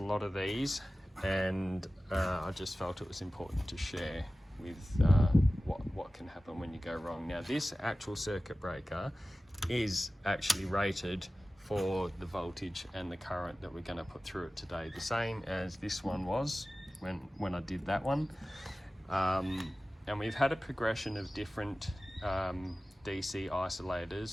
of these, and I just felt it was important to share with what can happen when you go wrong. Now, this actual circuit breaker is actually rated for the voltage and the current that we're going to put through it today, the same as this one was when I did that one. And we've had a progression of different DC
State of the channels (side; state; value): both; normal; correlation 0.96